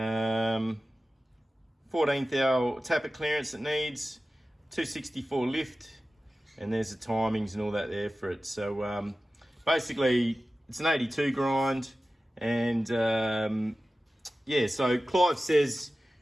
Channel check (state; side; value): normal; both; correlation 0.95